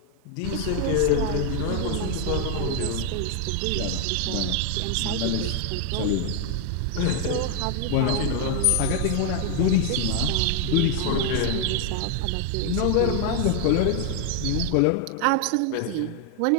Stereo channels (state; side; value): different; both; correlation 0.01